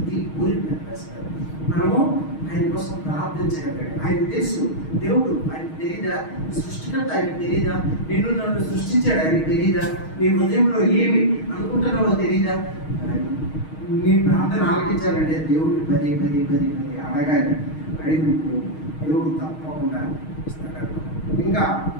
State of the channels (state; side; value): late; right; 6.4 ms